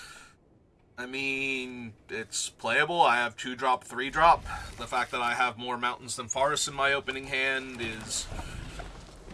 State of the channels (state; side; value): identical; both; correlation 1.00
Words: I mean, it's playable. I have 2-drop, 3-drop. The fact that I have more mountains than forests in my opening hand is